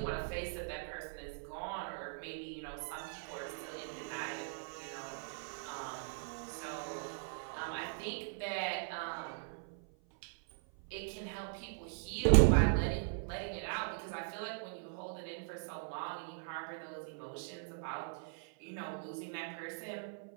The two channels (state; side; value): silent; left; 51 dB below the other